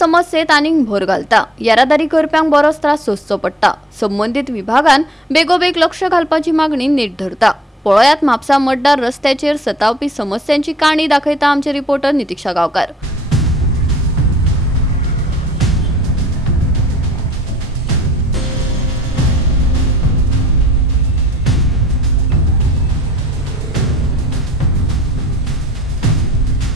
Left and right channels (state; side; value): normal; both; correlation 0.57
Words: आनीक भर घालता। येरादारी करप्यांक बरोच त्रास सोंसचो पडटा। संबंधित विभागान बेगोबेग लक्ष घालपाची मागणी नीट धरता। पळयात म्हापसा मतदार रस्त्याचेर सतावपी समस्यांची काणी दाखयता आमचे रिपोर्टर नितीक्षा गांवकार।